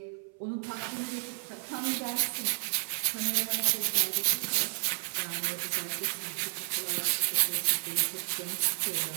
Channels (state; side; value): silent; left; 57 dB below the other